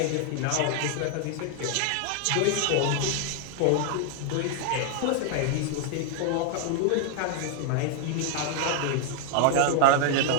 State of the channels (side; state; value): both; different; correlation 0.00